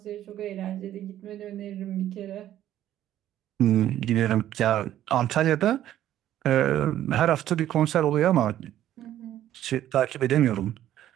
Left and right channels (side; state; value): left; quieter; 12.3 dB